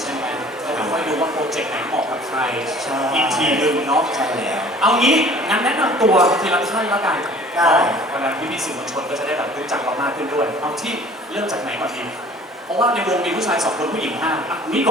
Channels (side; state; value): both; normal; correlation 0.50